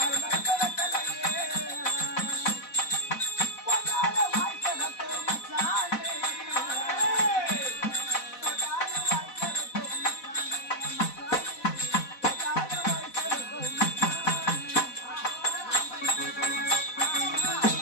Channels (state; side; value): late; right; 4.1 ms